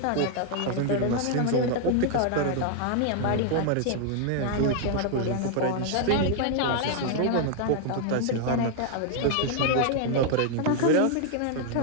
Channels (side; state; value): both; different; correlation 0.00